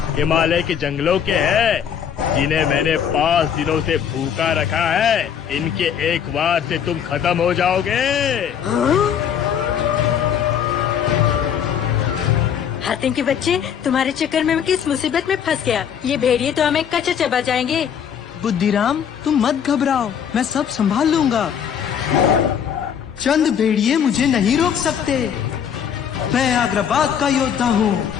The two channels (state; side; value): quieter; right; 8.3 dB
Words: हिमालय के जंगलों के हैं, जिन्हें मैंने 5 दिनों से भूखा रखा है। इनके एक बार से तुम खत्म हो जाओगे। हातिम के बच्चे, तुम्हारे चक्कर में मैं किस मुसीबत में फंस गया। ये भेड़िए तो हमें कच्चा चबा जाएंगे। बुद्धिराम, तुम मत घबराओ, मैं सब संभाल लूंगा। चंद भेड़िए मुझे नहीं रोक सकते। मैं आग्राबाद का योद्धा हूँ।